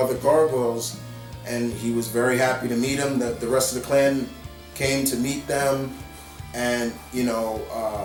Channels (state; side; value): identical; both; correlation 1.00